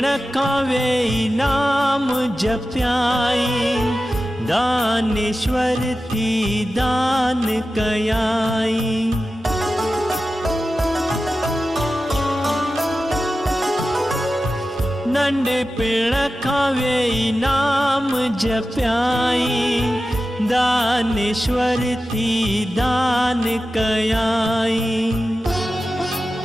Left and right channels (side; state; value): both; normal; correlation 0.93